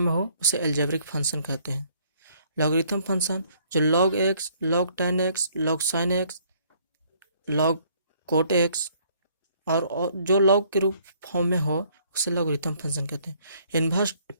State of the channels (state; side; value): inverted; both; correlation -0.63